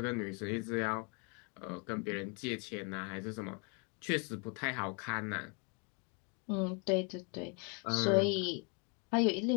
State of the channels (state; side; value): quieter; right; 35.4 dB